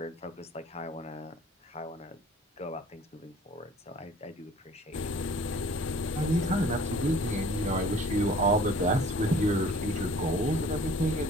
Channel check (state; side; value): normal; both; correlation 0.51